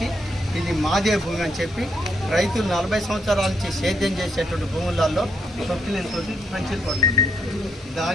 ఇది మాదే భూమి అని చెప్పి రైతులు 40 సంవత్సరాల నుంచి సేద్యం చేసేటువంటి భూములలో తొక్కిలేతో పంచులు పడుతుంది.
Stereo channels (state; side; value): normal; both; correlation 0.76